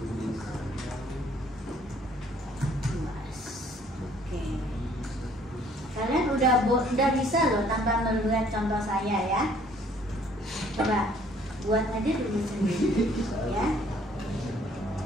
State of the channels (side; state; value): both; normal; correlation 0.60